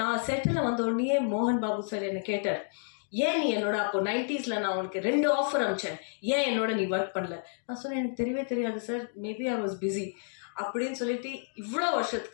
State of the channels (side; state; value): right; silent; digital silence